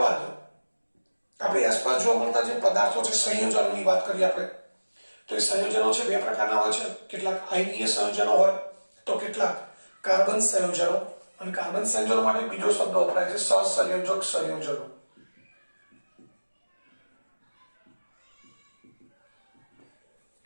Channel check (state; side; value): inverted; both; correlation -1.00